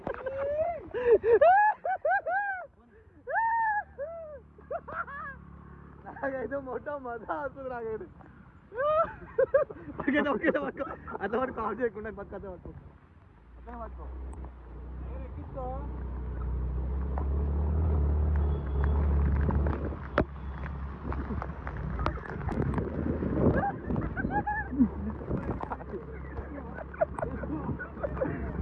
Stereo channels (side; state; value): both; identical; correlation 1.00